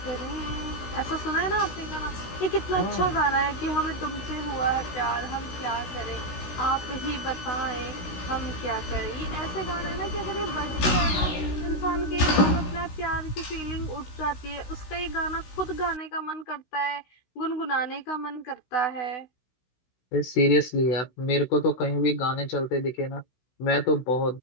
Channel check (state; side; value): late; right; 16 ms